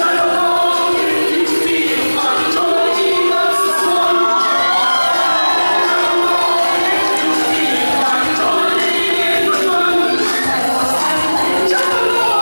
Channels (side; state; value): both; inverted; correlation -1.00